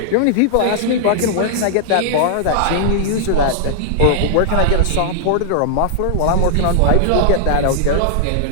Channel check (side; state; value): both; different; correlation -0.01